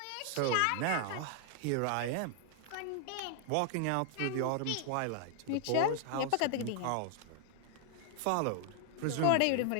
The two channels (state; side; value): different; both; correlation 0.00